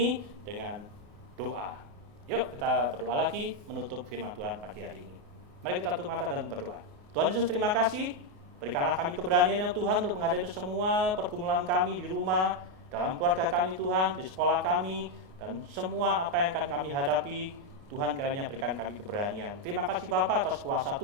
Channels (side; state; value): left; late; 28 ms